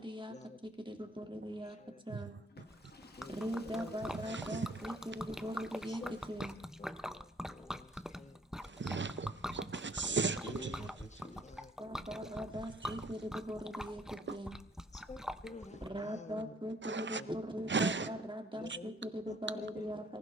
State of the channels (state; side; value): normal; both; correlation 0.61